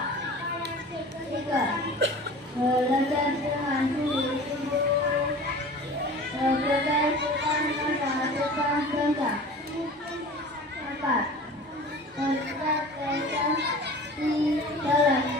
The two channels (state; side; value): normal; both; correlation 0.40